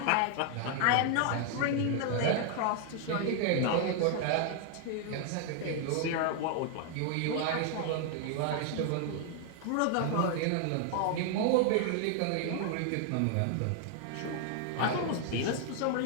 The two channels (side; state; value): both; different; correlation 0.00